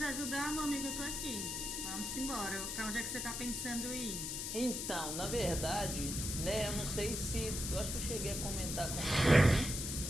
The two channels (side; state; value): left; noise; hiss, 3 dB below the sound